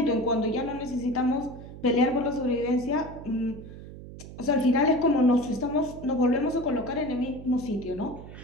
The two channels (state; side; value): noise; right; hum, 14 dB below the sound